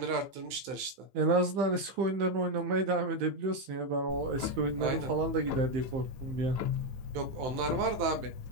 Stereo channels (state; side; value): late; left; 15 ms